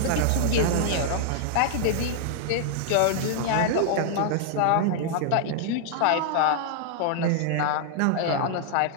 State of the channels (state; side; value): different; both; correlation 0.00